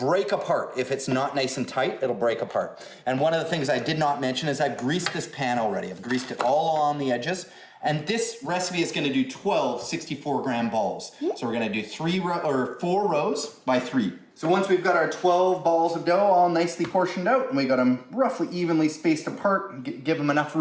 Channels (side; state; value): both; identical; correlation 1.00